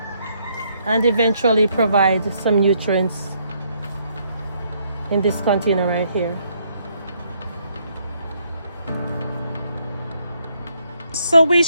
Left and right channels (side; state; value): both; inverted; correlation -0.71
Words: and eventually provide some nutrients in this container right here. So we